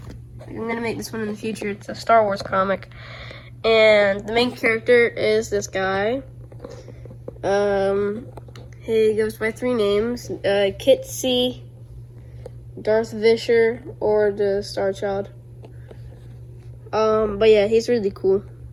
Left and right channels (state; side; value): identical; both; correlation 1.00